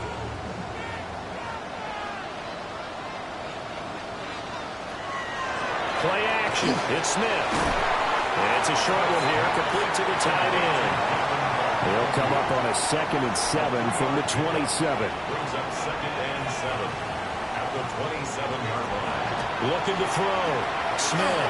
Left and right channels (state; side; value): identical; both; correlation 1.00